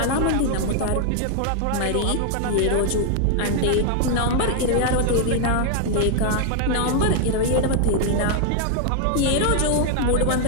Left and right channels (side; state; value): both; different; correlation 0.00